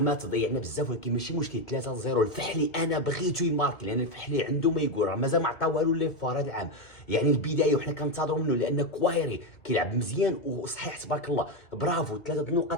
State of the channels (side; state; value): right; late; 2.2 ms